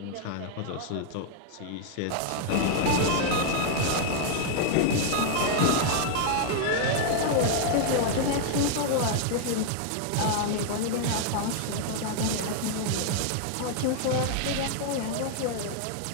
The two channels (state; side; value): different; both; correlation 0.00